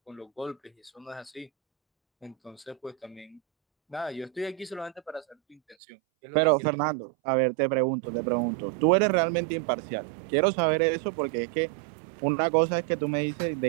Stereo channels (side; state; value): left; drops out; at 5.8 s